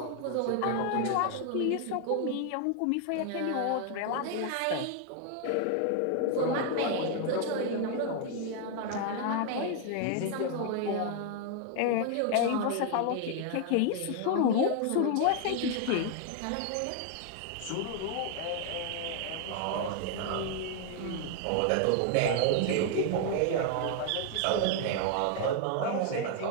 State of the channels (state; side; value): different; both; correlation 0.00